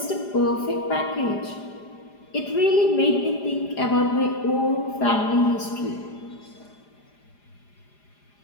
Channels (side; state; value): right; late; 4.9 ms